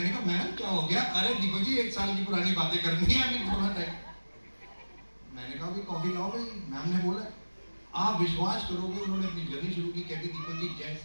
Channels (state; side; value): inverted; both; correlation -1.00